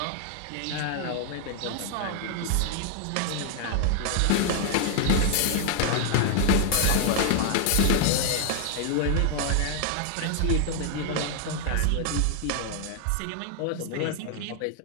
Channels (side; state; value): both; different; correlation 0.00